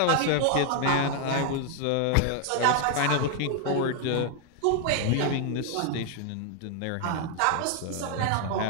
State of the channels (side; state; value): both; different; correlation 0.00